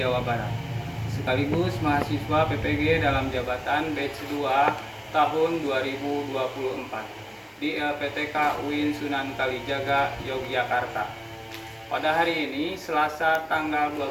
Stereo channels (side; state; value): both; identical; correlation 1.00